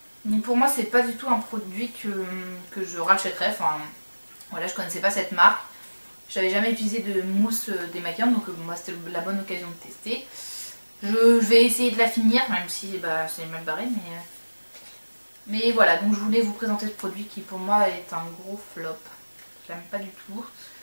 Donc pour moi, c'est pas du tout un produit que je rachèterais. Enfin, voilà, je connaissais pas cette marque. J'avais jamais utilisé de mousse démaquillante, donc moi c'était la bonne occasion de tester. Je vais essayer de la finir, même si bah, c'est mal barré, mais voilà, donc je voulais vous présenter ce produit qui pour moi est un gros flop. Je l'aime pas du tout,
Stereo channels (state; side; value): inverted; both; correlation -1.00